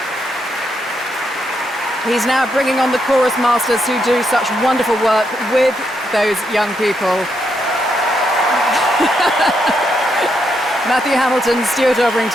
He's now bringing on the chorus masters who do such wonderful work with those young people. Matthew Hamilton, Stuart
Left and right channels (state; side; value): normal; both; correlation 0.79